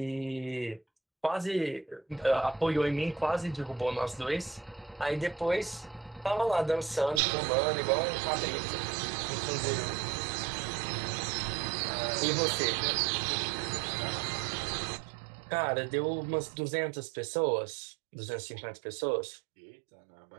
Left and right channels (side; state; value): left; drops out; at 7.2 s